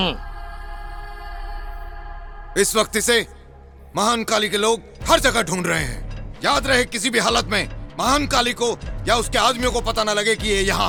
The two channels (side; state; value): both; identical; correlation 1.00